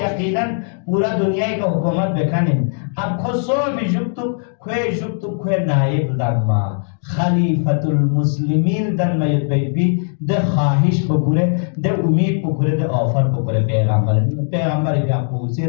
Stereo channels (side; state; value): right; silent; 66 dB below the other